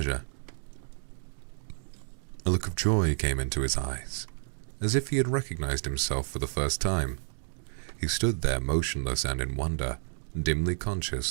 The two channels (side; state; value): left; silent; digital silence